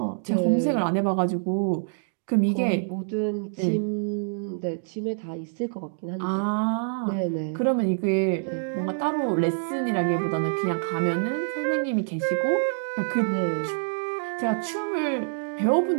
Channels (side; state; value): left; silent; digital silence